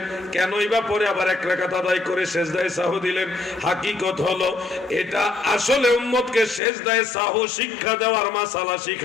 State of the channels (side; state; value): right; drops out; at 6.6 s